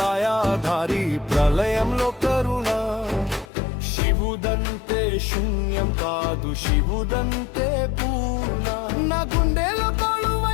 ప్రళయంలో కరుణ శివుదంతే శూన్యం కాదు శివుదంతే పూర్ణ నా గుండెలో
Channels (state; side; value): drops out; right; at 3.5 s